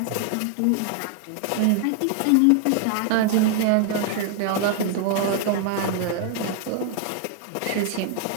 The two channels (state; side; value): different; both; correlation 0.00